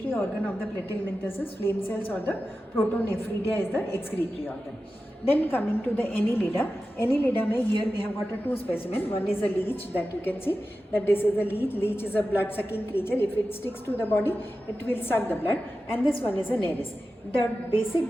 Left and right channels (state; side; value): normal; both; correlation 0.93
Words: organ of the platyhelminthes is flame cells, or the protonephridia is the excretory organ. Then coming to the Annelida, Annelida mein, here we have got a two specimen. One is a leech, that you can see that this is a leech. Leech is a blood sucking creature. If it sticks to the body, it will suck the blood. And this one is a Nereis. The basic